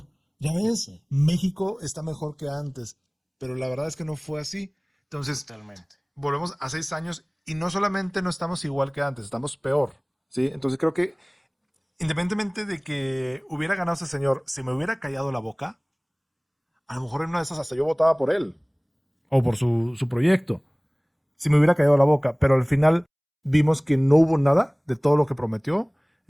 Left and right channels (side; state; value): both; identical; correlation 1.00